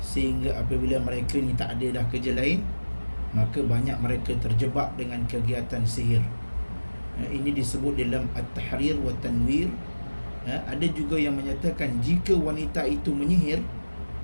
apabila mereka ni tak ada dah kerja lain, maka banyak mereka terjebak dengan kegiatan sihir. Ini disebut dalam At-Tahrir wa Tanwir. Ada juga yang menyatakan jika wanita itu menyihir,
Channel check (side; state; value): both; inverted; correlation -1.00